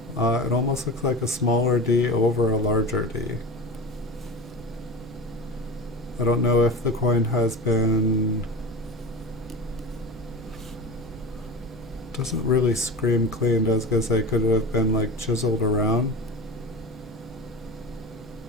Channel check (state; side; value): normal; both; correlation 0.30